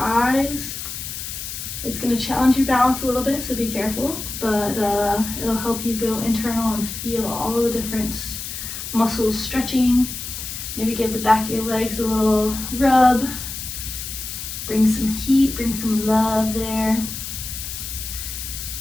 it's going to challenge your balance a little bit, so be careful, but it'll help you go internal and feel all of the different muscles stretching. Maybe give the back of your legs a little rub. Bring some heat, bring some love there.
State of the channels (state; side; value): noise; left; hiss, 7 dB below the sound